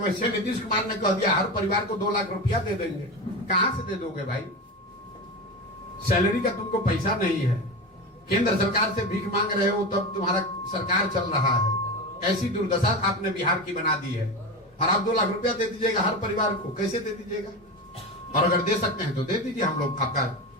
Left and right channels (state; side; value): normal; both; correlation 0.22